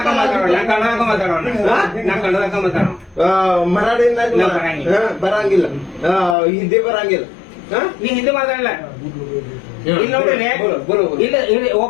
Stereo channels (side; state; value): right; drops out; at 6.4 s